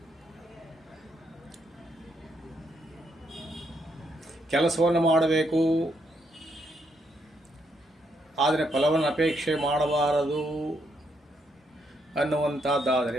ಕೆಲಸವನ್ನು ಮಾಡಬೇಕು, ಆದರೆ ಫಲವನ್ನು ಅಪೇಕ್ಷೆ ಮಾಡಬಾರದು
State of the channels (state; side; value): normal; both; correlation 0.77